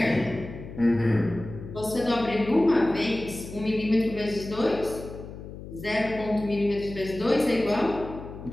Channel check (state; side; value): noise; left; hum, 12 dB below the sound